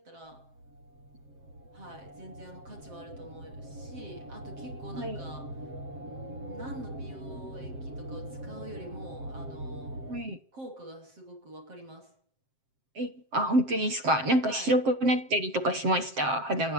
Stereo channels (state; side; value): late; left; 7.6 ms